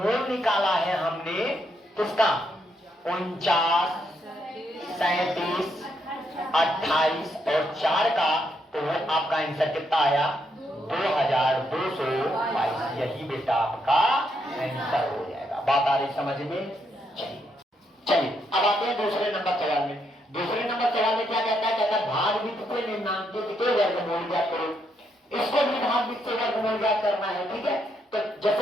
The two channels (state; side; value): normal; both; correlation 0.77